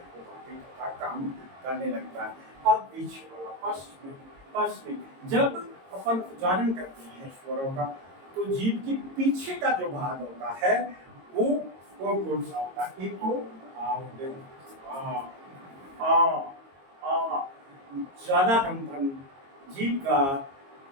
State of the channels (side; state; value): left; late; 22 ms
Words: बाकी का काम करने लगता है। अब पीछे वाला पश्चिमी जब अपन उच्चारण करते हैं स्वरों का तो जीभ के पीछे का जो भाग होता है वो कौन सा होता है? एक तो ज्यादा कंपन जीभ का